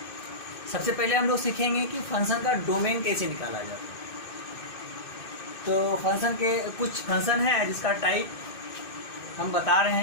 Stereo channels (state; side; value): late; right; 2.6 ms